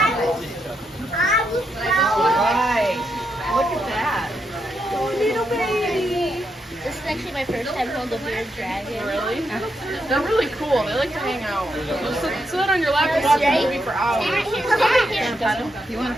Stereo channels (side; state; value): both; normal; correlation 0.81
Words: Right. Look at that. Little baby. This is actually my first time holding a bearded dragon. Really? They're really cool. They like to hang out. They'll sit on your lap and watch a movie for hours. You want